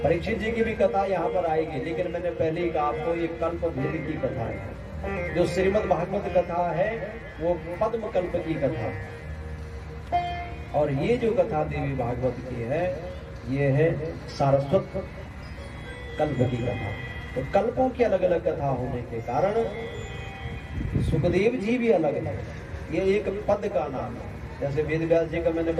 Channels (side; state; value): both; identical; correlation 1.00